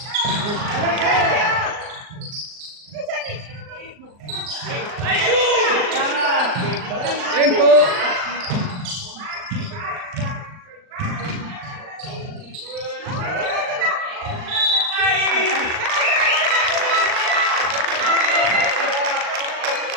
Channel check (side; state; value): left; late; 39 ms